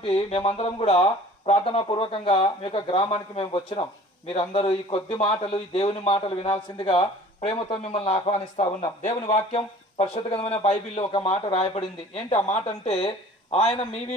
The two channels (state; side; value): normal; both; correlation 0.48